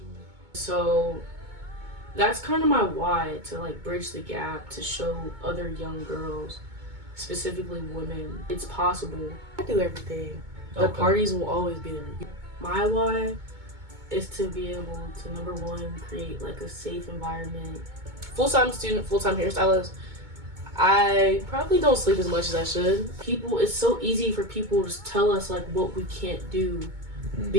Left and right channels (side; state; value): left; late; 2.2 ms